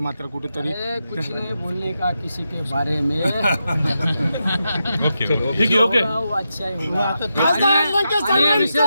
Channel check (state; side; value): inverted; both; correlation -0.87